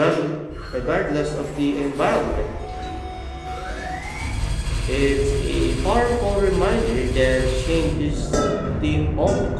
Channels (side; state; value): both; identical; correlation 1.00